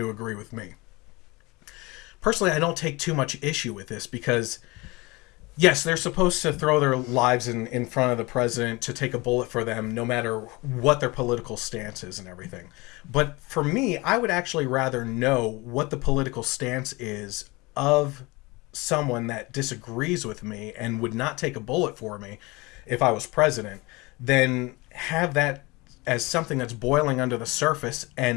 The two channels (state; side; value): quieter; right; 23.9 dB